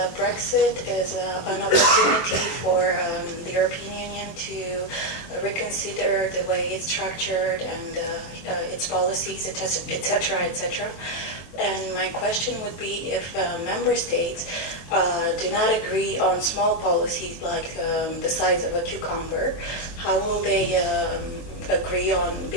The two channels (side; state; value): right; late; 23 ms